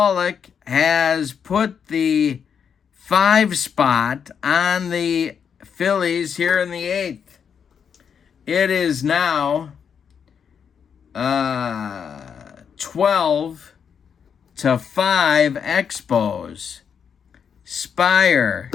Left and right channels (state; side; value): quieter; right; 7.2 dB